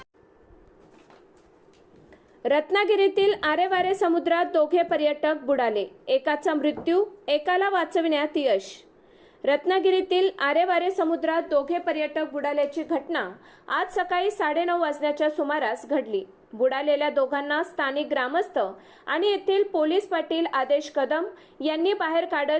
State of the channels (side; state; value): both; identical; correlation 1.00